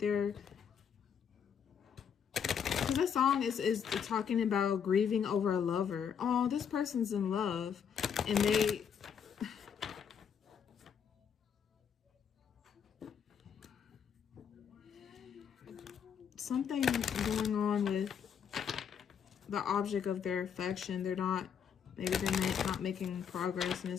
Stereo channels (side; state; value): right; quieter; 7.6 dB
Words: Because that song is talking about grieving over a lover. Oh, this person's in love. And they... Something going on with the object of their affection. They're not... Maybe they're not making progress and